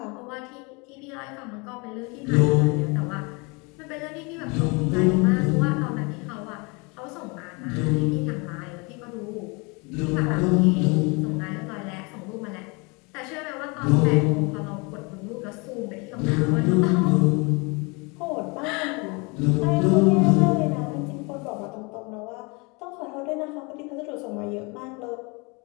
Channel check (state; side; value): quieter; right; 29.3 dB